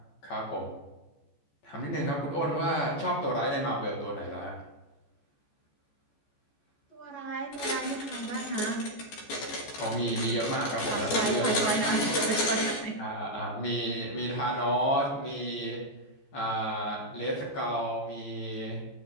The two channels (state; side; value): late; right; 14 ms